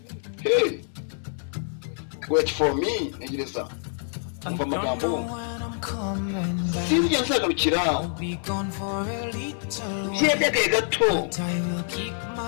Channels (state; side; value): silent; right; 61 dB below the other